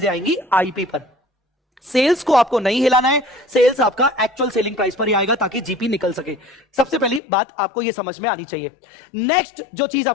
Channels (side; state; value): right; drops out; at 7.2 s